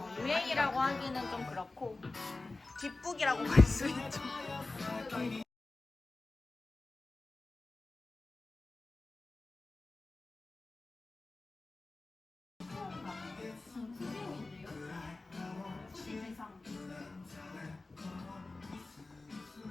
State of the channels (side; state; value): right; quieter; 3.3 dB